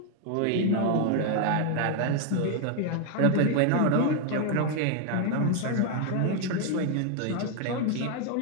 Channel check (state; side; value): different; both; correlation 0.00